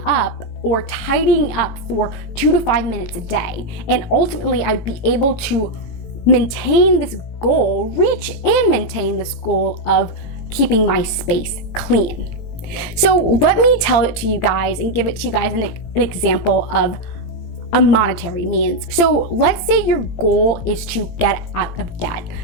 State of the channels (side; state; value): right; late; 18 ms